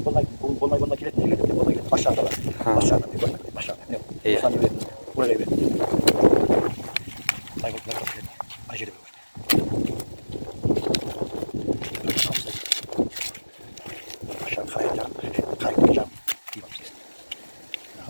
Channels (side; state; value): both; inverted; correlation -1.00